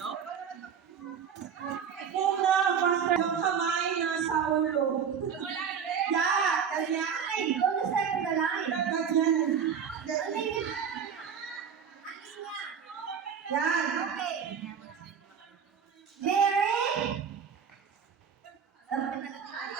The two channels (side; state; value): left; quieter; 7.2 dB